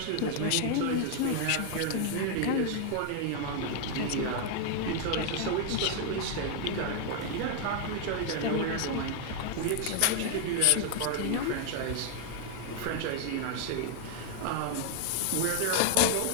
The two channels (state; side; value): different; both; correlation 0.00